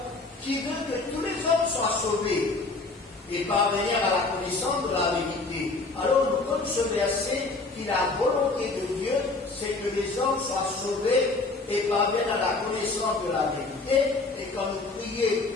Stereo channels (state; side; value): quieter; right; 3.5 dB